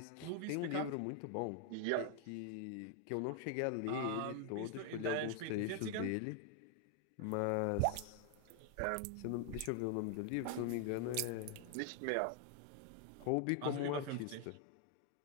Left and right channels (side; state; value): both; different; correlation 0.00